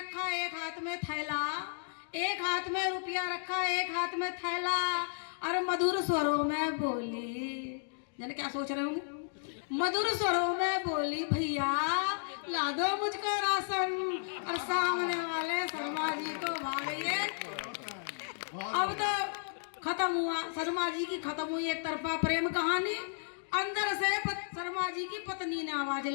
एक हाथ में थैला, एक हाथ में रुपया रखा, एक हाथ में थैला। और मधुर स्वरों में बोली, जाने क्या सोच रहे होंगे, मधुर स्वरों में बोली भैया ला दो मुझको राशन। और सामने वाले शर्मा जी को भागइए। अब तो खत्म हुआ, शर्मा जी की खत्म हुई एक तरफा प्रेम कहानी। अंदर से शर्मा जी की पत्नी ने आवाज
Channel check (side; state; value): right; silent; digital silence